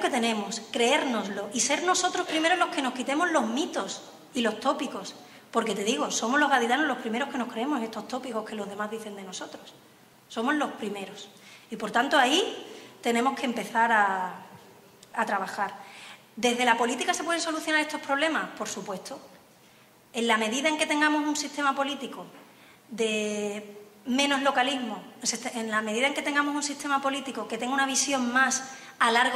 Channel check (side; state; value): both; identical; correlation 1.00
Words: tenemos, creérnoslo y ser nosotros primero los que nos quitemos los mitos y los tópicos. Porque te digo, somos los gaditanos los primeros que nos creemos estos tópicos que los demás dicen de nosotros. Somos los primeros. Y por tanto, ahí tenemos que empezar a trabajar. ¿Desde la política se pueden solucionar estos problemas? Por supuesto. En la medida en que tengamos un sistema político de menos localismo, en la medida en que tengamos un sistema político que tenga una visión más a